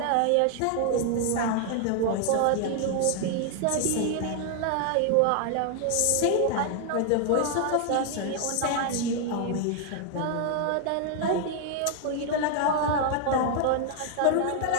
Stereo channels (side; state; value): both; different; correlation 0.00